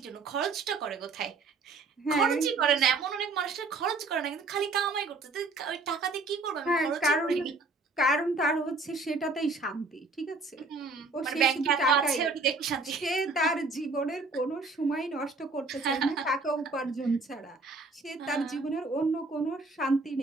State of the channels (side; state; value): left; quieter; 3.7 dB